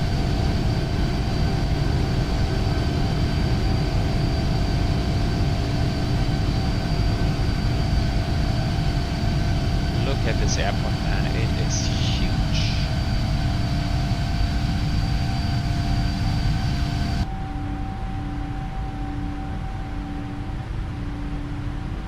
Look at this airport, man. It is huge.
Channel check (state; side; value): identical; both; correlation 1.00